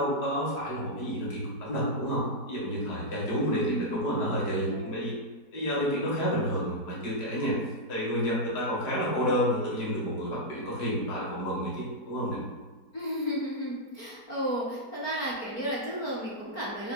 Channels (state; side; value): late; right; 4.4 ms